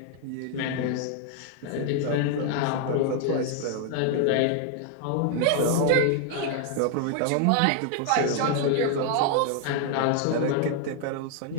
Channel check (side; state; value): both; different; correlation 0.00